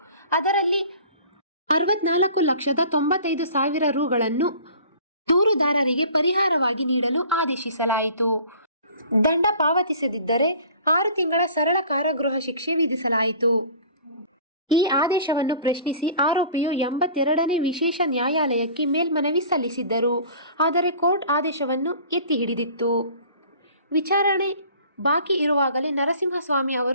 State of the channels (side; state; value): both; inverted; correlation -0.46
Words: ಅದರಲ್ಲಿ 64,95,000 ರೂಗಳನ್ನು ದೂರುದಾರರಿಗೆ ಪರಿಹಾರವಾಗಿ ನೀಡಲು ಆದೇಶಿಸಲಾಯಿತು. ದಂಡ ಪಾವತಿಸದಿದ್ದರೆ 6 ತಿಂಗಳ ಸರಳ ಕಾರಾಗೃಹ ಶಿಕ್ಷೆ ವಿಧಿಸಲಾಯಿತು. ಈ ಆದೇಶವನ್ನು ಪ್ರಶ್ನಿಸಿ ಆರೋಪಿಯು 82ನೇ ವಿಶೇಷ ನ್ಯಾಯಾಲಯಕ್ಕೆ ಮೇಲ್ಮನವಿ ಸಲ್ಲಿಸಿದ್ದರು. ಆದರೆ ಕೋರ್ಟ್ ಆದೇಶವನ್ನು ಎತ್ತಿ ಹಿಡಿದಿತ್ತು. ವಿಚಾರಣೆ ಬಾಕಿ ಇರುವಾಗಲೇ ನರಸಿಂಹಸ್ವಾಮಿ